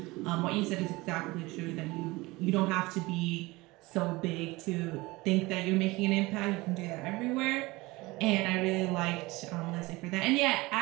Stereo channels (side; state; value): left; quieter; 21.7 dB